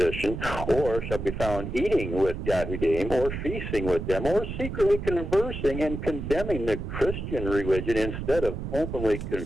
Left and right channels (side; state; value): right; noise; rumble, 6 dB below the sound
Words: or shall be found eating with Yahudim, or feasting with them, or secretly conversing and condemning the Christian religion instead of openly